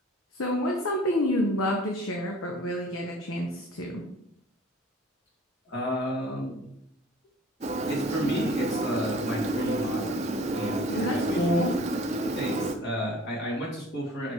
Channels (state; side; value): normal; both; correlation 0.48